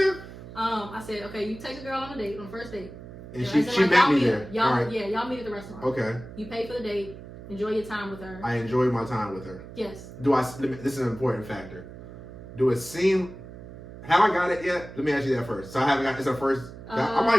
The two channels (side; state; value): right; noise; hum, 14 dB below the sound